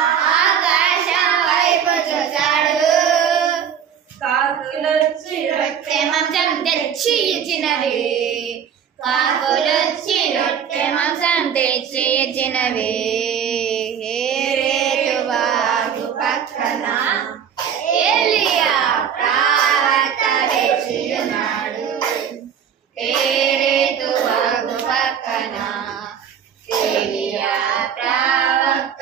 ఆకాశం వైపు చూశాడు. కాకులొచ్చి రొట్టె మాంసం తెచ్చి ఇచ్చినవి, కాకులొచ్చి రొట్టె మాంసం తెచ్చి ఇచ్చినవి. కేరేతు వాగు పక్కన ఏలియా ప్రవక్త వేచియున్నాడు. కేరేతు వాగు పక్కన ఏలియా ప్రవక్త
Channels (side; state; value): left; quieter; 8.2 dB